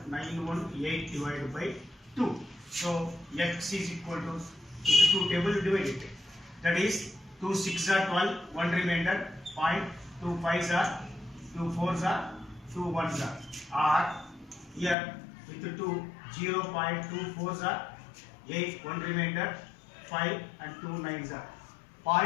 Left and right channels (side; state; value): right; drops out; at 15.0 s